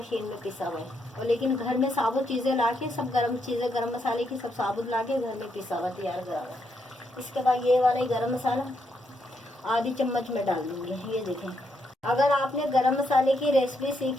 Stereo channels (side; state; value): both; normal; correlation 0.78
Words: में पिसा हुआ है। और लेकिन घर में साबुत चीज़ें ला के सब गरम चीज़ें गरम मसाले की सब साबुत ला के घर में पिसा हुआ तैयार करा हुआ। इसके बाद ये वाला ही गरम मसाला आधी चम्मच में डाल दूँगी। ये देखें। अगर आपने गरम मसाले की रेसिपी